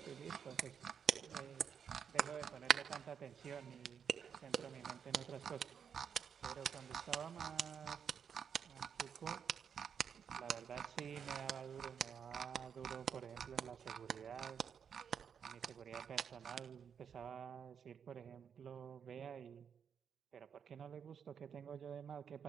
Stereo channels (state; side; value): quieter; left; 7.4 dB